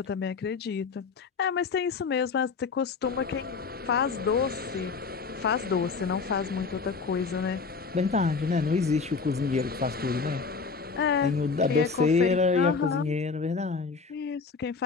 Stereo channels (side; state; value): right; quieter; 4.8 dB